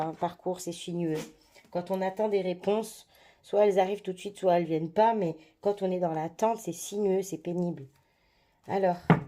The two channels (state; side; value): identical; both; correlation 1.00